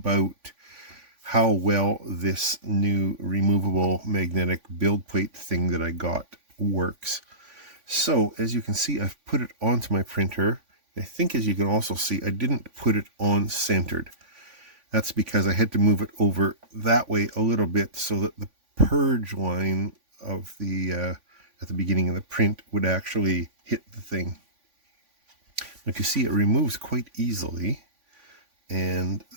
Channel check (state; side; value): late; left; 3.5 ms